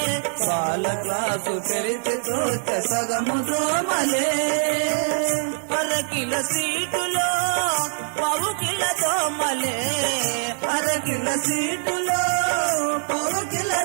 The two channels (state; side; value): silent; left; digital silence